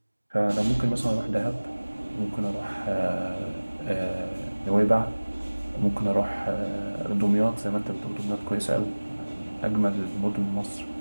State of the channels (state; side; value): inverted; both; correlation -1.00